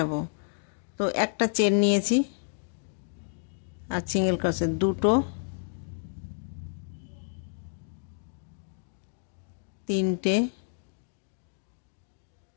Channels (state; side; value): silent; right; digital silence